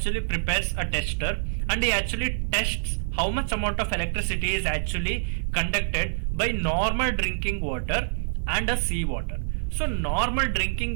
prepares a tester and he actually tests how much amount of electricity is actually conducted by normal drinking water and a sea water. So normal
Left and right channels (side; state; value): left; silent; 55 dB below the other